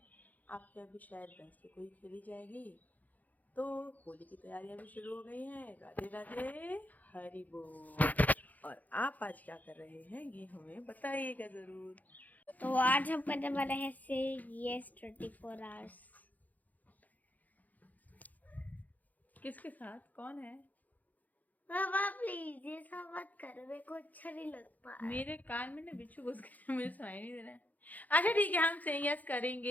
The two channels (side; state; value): right; late; 0.080 ms